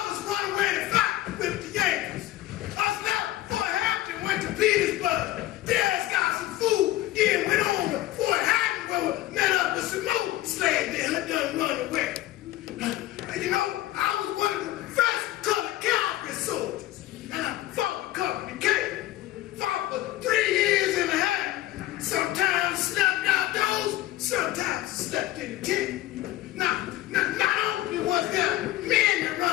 run away to fight with the Yankees. Us left Fort Hampton, went to Petersburg. There got some food, then went on to Fort Hatton, where we met up with some more slaves that had done run away. You know, I was one of the first colored cavalry soldiers, and I fought with Company K. Fought for 3 years and a half. Sometimes slept outdoors, sometimes slept in the tent. Now, not only was there men that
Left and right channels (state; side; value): quieter; right; 15.5 dB